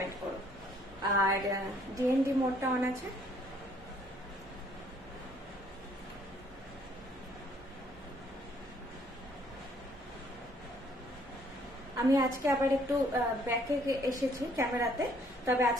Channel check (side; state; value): both; normal; correlation 0.63